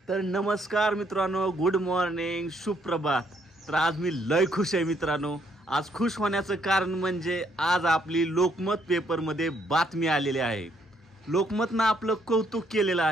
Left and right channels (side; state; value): both; normal; correlation 0.70